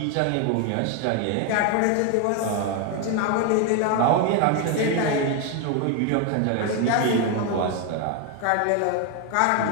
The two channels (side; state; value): both; different; correlation 0.01